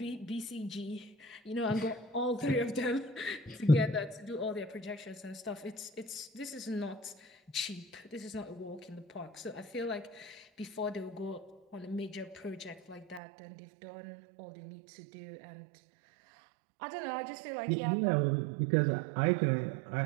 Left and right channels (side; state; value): left; drops out; at 13.2 s